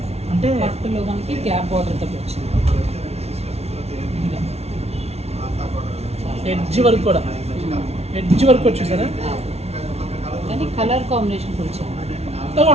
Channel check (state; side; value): late; left; 0.31 ms